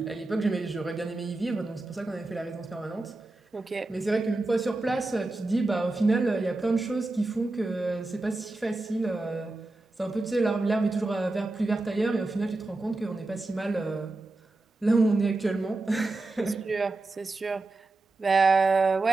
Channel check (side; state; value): left; quieter; 3.1 dB